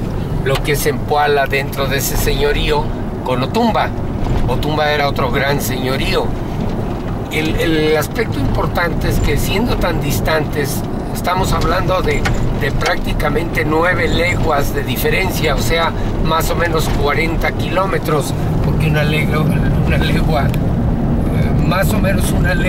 lo que es Zempoala dentro de ese señorío con Otumba. Otumba era otro gran señorío. El aspecto importante es que siendo tan distantes, estamos hablando de prácticamente 9 leguas de diferencia, o sea, más o menos 40 kilómetros, porque una legua, más o menos una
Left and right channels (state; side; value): identical; both; correlation 1.00